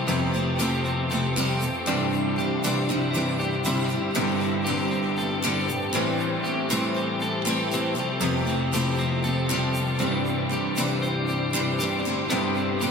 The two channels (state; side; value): normal; both; correlation 0.57